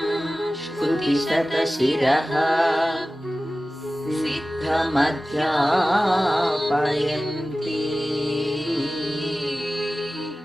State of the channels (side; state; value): both; normal; correlation 0.96